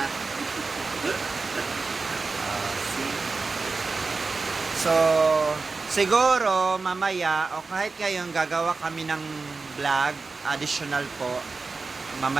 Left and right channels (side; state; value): left; quieter; 4.1 dB